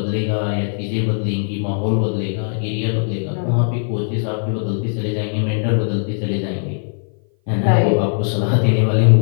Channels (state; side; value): silent; right; 57 dB below the other